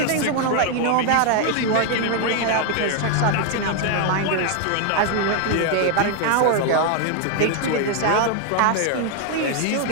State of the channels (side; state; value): both; different; correlation 0.01